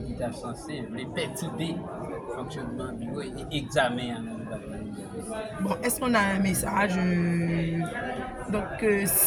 l'État censé, les petits dés, fonctionnement bureau et examen. Bon, est-ce qu'on a un message donc,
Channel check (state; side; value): identical; both; correlation 1.00